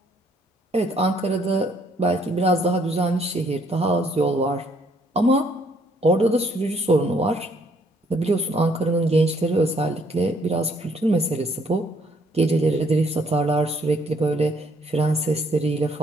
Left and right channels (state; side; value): normal; both; correlation 0.66